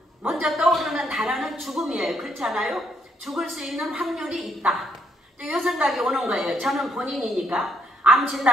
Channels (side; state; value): both; normal; correlation 0.73